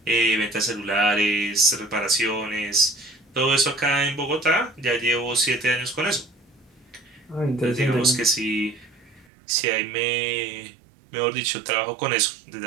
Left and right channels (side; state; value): left; drops out; at 9.2 s